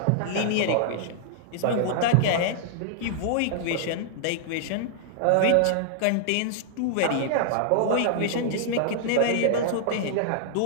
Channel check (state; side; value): different; both; correlation -0.01